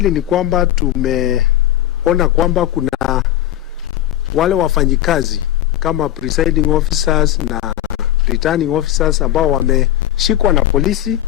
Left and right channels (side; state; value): right; quieter; 13.0 dB